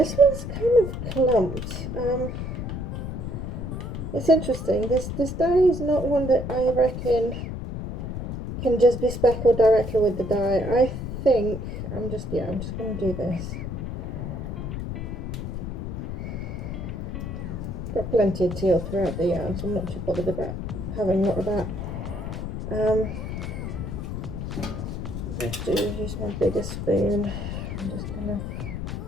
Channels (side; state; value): left; noise; rumble, 5 dB below the sound